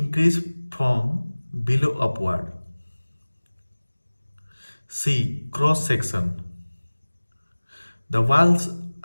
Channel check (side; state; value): both; inverted; correlation -1.00